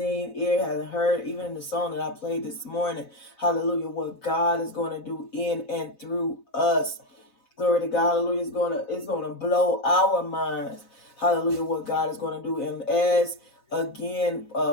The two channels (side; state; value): right; late; 4.0 ms